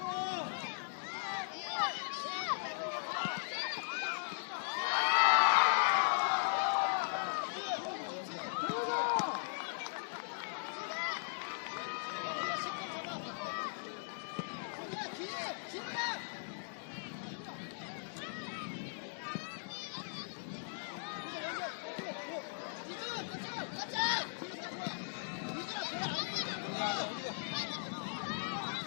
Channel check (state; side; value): silent; right; digital silence